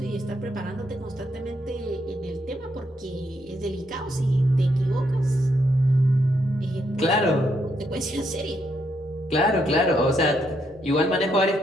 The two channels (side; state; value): both; normal; correlation 0.77